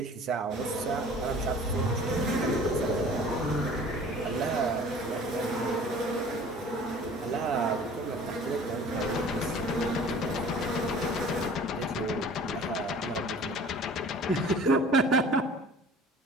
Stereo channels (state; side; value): normal; both; correlation 0.46